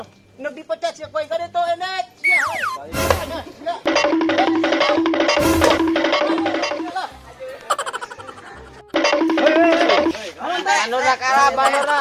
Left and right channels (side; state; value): both; identical; correlation 1.00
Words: Neuk dipecat sia ku aing kade to enek. Sia. Anura kalap, anura.